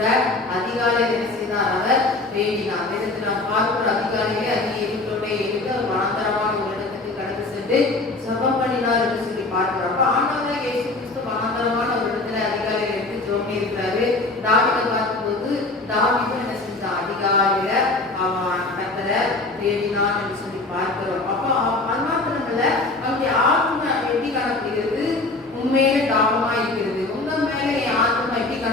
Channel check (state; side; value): quieter; right; 3.2 dB